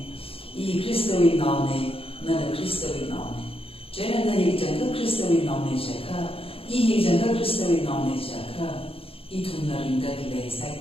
I Cristo in nome, nana Cristo in nome. Jena na yikjanga Cristo in nome jaka, I yikjanga Cristo in nome jaka. I tunna rinda dile sai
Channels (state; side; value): late; right; 0.27 ms